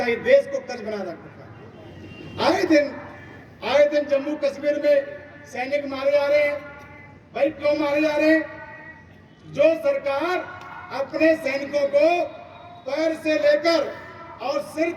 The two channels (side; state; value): both; identical; correlation 1.00